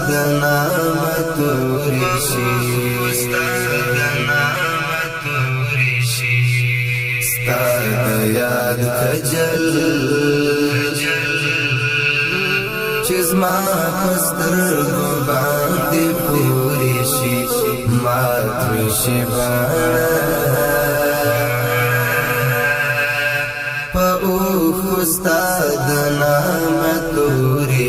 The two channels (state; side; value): identical; both; correlation 1.00